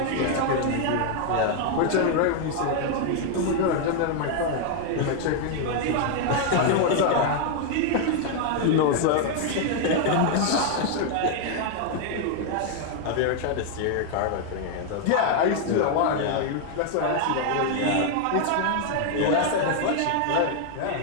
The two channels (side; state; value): both; different; correlation 0.00